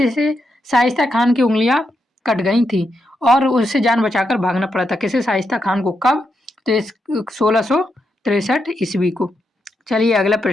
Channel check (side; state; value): both; normal; correlation 0.83